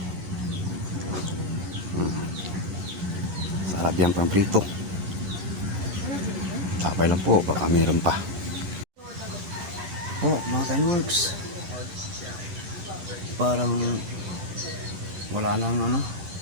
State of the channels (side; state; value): left; late; 10 ms